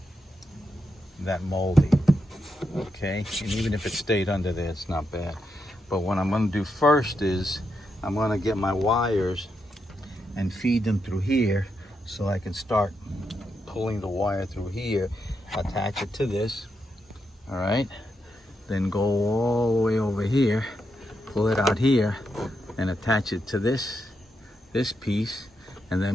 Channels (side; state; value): both; normal; correlation 0.83